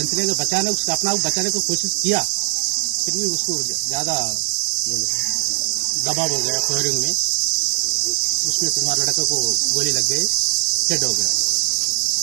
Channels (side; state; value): left; silent; digital silence